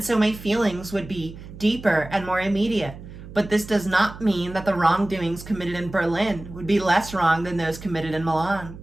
so my feelings would be deeper and more immediate. But this does not mean that the wrongdoings committed in Berlin would be less wrong than those committed in Milan.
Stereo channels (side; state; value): right; noise; hum, 15 dB below the sound